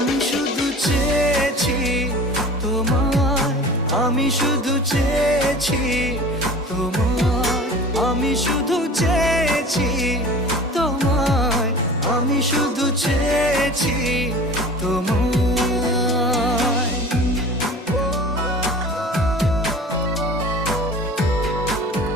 শুধু চেয়েছি তোমায়, আমি শুধু চেয়েছি তোমায়, আমি শুধু চেয়েছি তোমায়, আমি শুধু চেয়েছি তোমায়।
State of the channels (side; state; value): both; normal; correlation 0.40